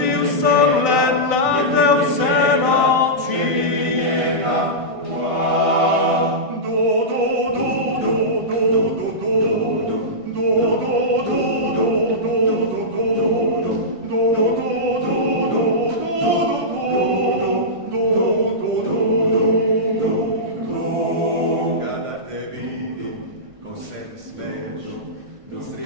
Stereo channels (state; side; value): late; left; 1.5 ms